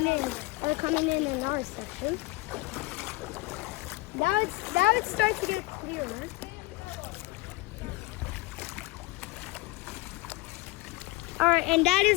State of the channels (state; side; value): quieter; right; 22.3 dB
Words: in our section. Now it's starting to get clearer. Alright, and that